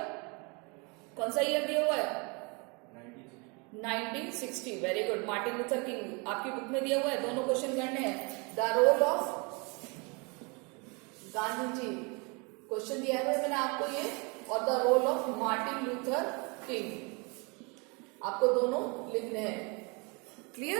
कौन सा ईयर दिया हुआ है, 1960। Very good, Martin Luther King आपकी बुक में दिया हुआ है, दोनों क्वेश्चन करने हैं। The role of Gandhi ji question दिया है मैंने आपको ये, और the role of Martin Luther King आपको दोनों लिखने हैं।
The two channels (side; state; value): left; quieter; 30.6 dB